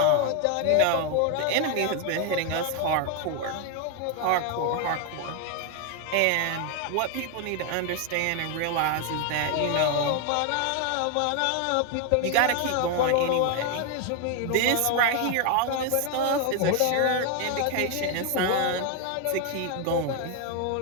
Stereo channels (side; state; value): both; different; correlation 0.01